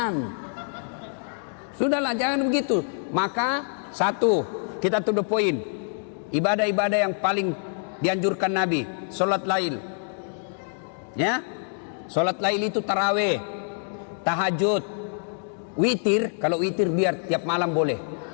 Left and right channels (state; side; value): silent; right; digital silence